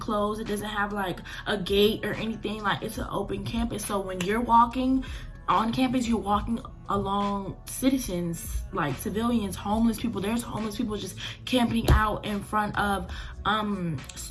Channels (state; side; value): identical; both; correlation 1.00